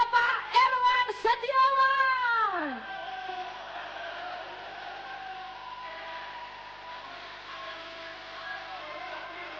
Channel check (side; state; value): left; noise; hum, 26 dB below the sound